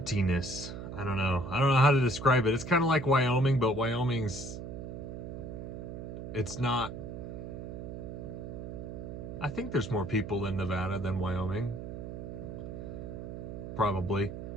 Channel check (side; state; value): right; noise; hum, 8 dB below the sound